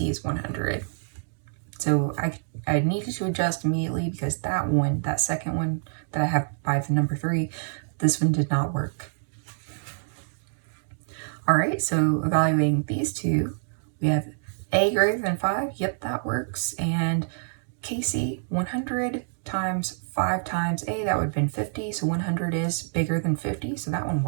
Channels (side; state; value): left; silent; digital silence